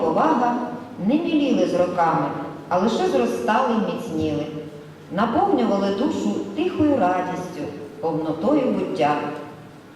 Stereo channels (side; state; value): both; identical; correlation 1.00